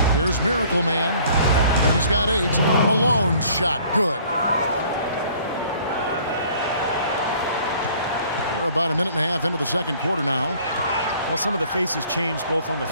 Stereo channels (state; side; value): inverted; both; correlation -0.55